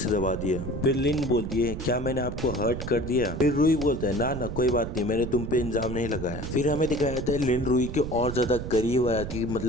दबा दिया। फिर लिन बोलती है क्या मैंने आपको हर्ट कर दिया? फिर रुई बोलता है ना कोई बात नहीं, मैंने तुम पे इल्जाम नहीं लगाया। फिर हमें दिखाया जाता है लिन रुई के और ज्यादा करीब आ जाती है,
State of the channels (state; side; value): noise; right; rumble, 7 dB below the sound